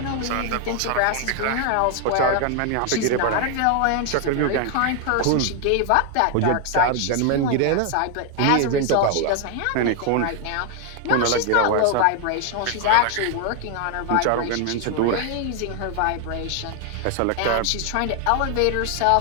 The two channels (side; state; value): both; different; correlation 0.00